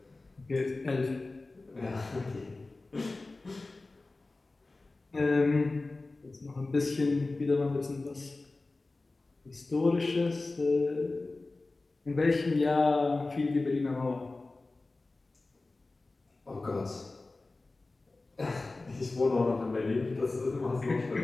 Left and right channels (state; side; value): quieter; right; 3.3 dB